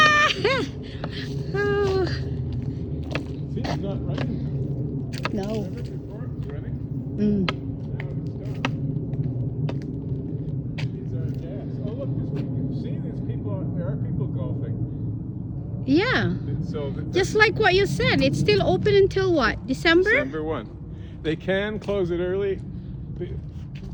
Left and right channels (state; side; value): identical; both; correlation 1.00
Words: Oh, See, it's not running. no. Remember before it was running? Mm. Now it's stopped. These are gas. Oh look, see, there are people golfing. Yeah, So just like what you said, it's still open until what? December? December 1. They can close it early